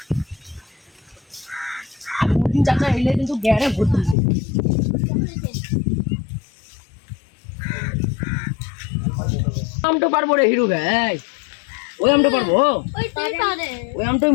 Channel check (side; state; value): right; drops out; at 4.2 s